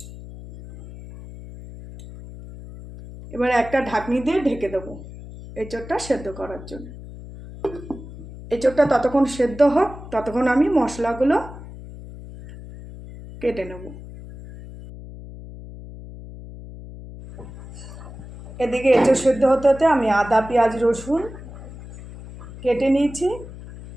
এবার একটা ঢাকনি দিয়ে ঢেকে দেবো এঁচোড়টা সেদ্ধ করার জন্য। এঁচোড়টা ততক্ষণ সেদ্ধ হোক, ততক্ষণ আমি মশলাগুলো কেটে নেব। এদিকে এঁচোড় সেদ্ধ হতে হতে আমি আদা পেঁয়াজ রসুন কেটে নিয়েছি,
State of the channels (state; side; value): noise; left; hum, 14 dB below the sound